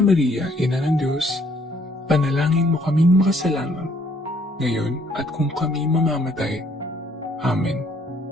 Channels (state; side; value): normal; both; correlation 0.65